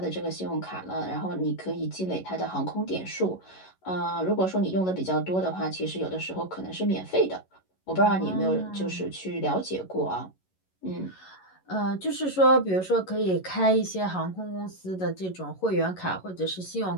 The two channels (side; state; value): right; late; 11 ms